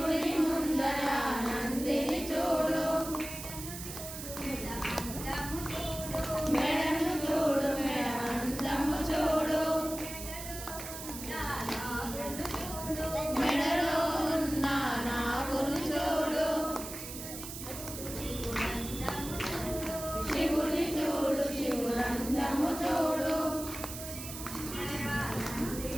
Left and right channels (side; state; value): right; noise; hiss, 9 dB below the sound